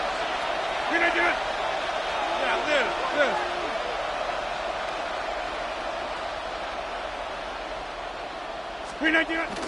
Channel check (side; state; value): both; identical; correlation 1.00